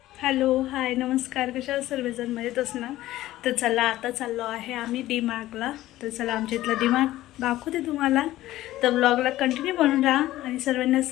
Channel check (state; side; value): quieter; right; 15.4 dB